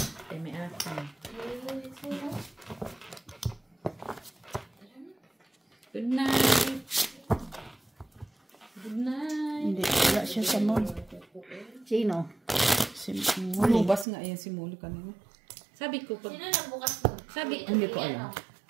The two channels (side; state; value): left; drops out; at 14.1 s